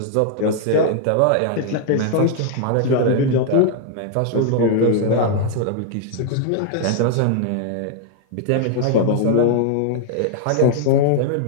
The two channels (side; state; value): both; different; correlation 0.00